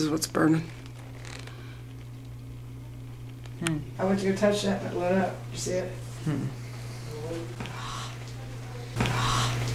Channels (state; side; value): identical; both; correlation 1.00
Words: what's burning. I went to go touch that and it lit up. You see it?